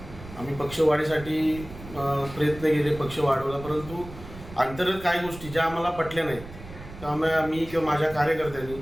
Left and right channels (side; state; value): right; noise; rumble, 15 dB below the sound